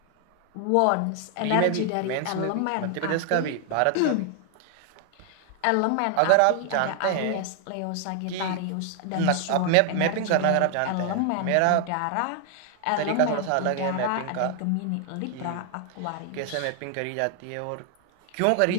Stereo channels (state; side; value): different; both; correlation 0.00